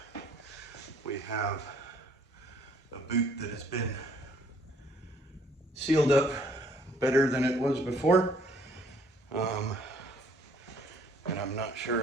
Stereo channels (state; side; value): normal; both; correlation 0.62